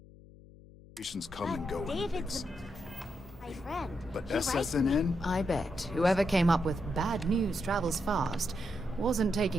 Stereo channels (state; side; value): noise; left; hum, 21 dB below the sound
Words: come and go. David's my friend. But He writes- SSNN? I bet whoever came up with bad news travels fast wasn't